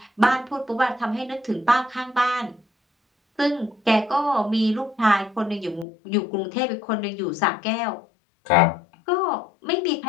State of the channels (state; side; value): drops out; right; at 5.9 s